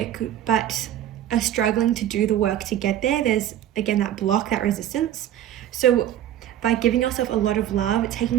but are struggling to do the work to get there. There's, again, that block, that resistance. So by giving yourself a lot of love,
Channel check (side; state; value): left; quieter; 11.5 dB